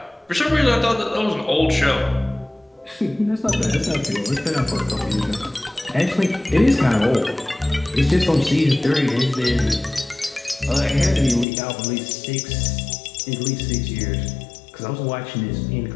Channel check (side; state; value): right; drops out; at 11.5 s